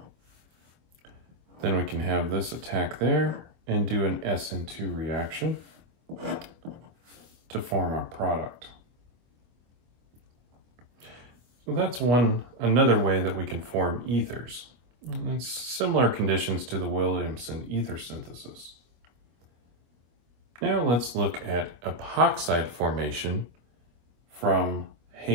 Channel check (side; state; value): left; late; 24 ms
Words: Then we can have this attack there and do an SN2 reaction to form our product. So that's another way that we can form ethers. And it's similar conditions to the Williamson ether synthesis. Now let's look at epoxide formation from